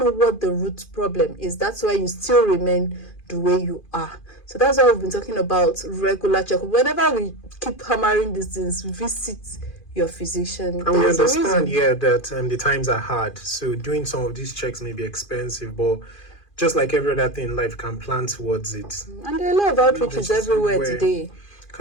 what the root problem is. That's why you still remain the way you are. So that's why we've been talking about regular checkup. Whenever we keep hammering these things, visit your physician. And we There's a understand, reason. that the times are hard. So doing some of these checks may be expensive, but just like every other thing in life, can plan towards it. And there are a lot of outreaches everywhere today.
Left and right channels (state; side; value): late; right; 2.4 ms